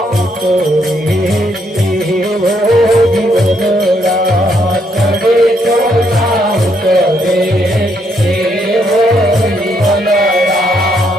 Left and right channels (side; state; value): both; normal; correlation 0.74